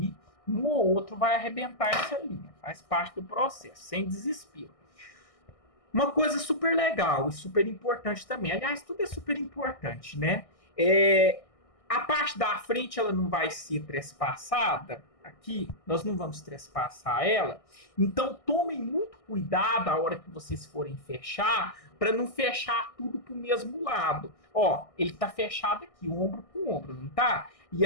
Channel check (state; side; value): late; right; 1.6 ms